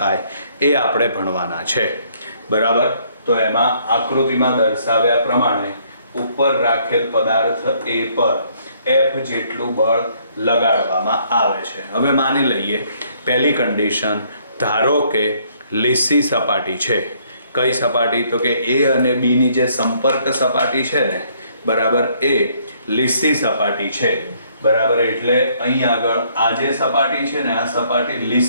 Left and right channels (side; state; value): both; inverted; correlation -0.66